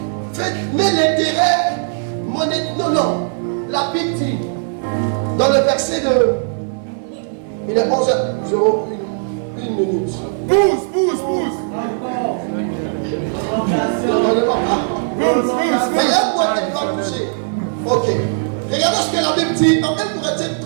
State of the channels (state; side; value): silent; left; 59 dB below the other